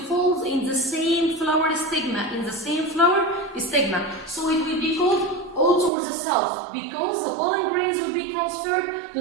in the same flower stigma, So it will be called auto or the self, because the pollen grains will be transferred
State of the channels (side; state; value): left; drops out; at 5.9 s